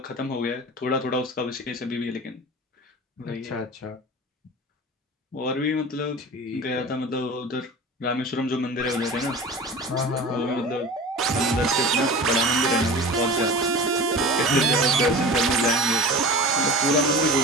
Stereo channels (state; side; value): normal; both; correlation 0.35